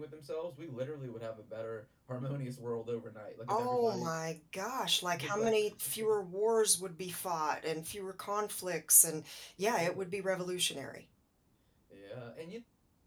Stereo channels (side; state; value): both; identical; correlation 1.00